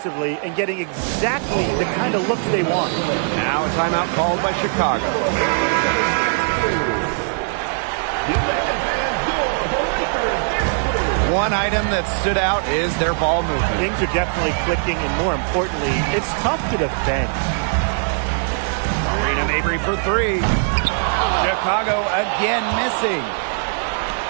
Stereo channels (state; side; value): silent; left; 66 dB below the other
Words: and getting exactly the kind of looks they want. Now a timeout called by Chicago. one item that stood out is their ball movement. Things are definitely clicking, and more importantly, it's tough to defend. Marina Mabrey for three. Chicago again missing.